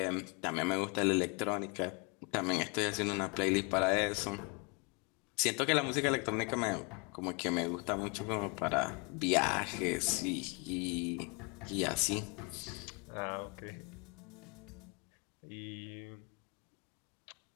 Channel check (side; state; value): right; quieter; 32.0 dB